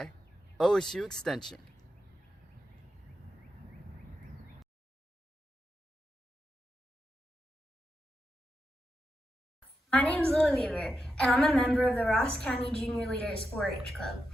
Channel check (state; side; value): normal; both; correlation 0.87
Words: OSU Extension. My name is Lily Weaver, and I'm a member of the Ross County Junior Leaders 4-H Club.